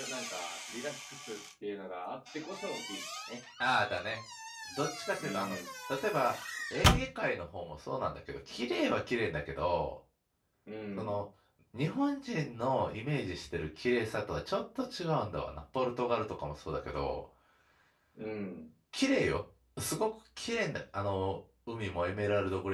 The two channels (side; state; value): both; identical; correlation 1.00